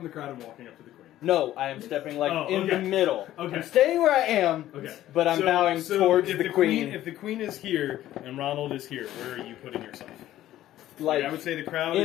the crowd and walking up to the queen. No, I am stepping Oh, in okay. the middle. Okay. I'm staying where I am, Okay. but I'm bowing towards if the queen. If the queen is here and Ronald is here, where are you putting yourself? Like, I would say the crowd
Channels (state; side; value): quieter; right; 13.6 dB